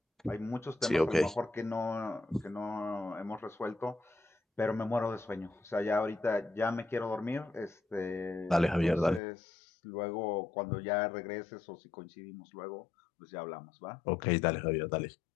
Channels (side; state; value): right; drops out; at 9.2 s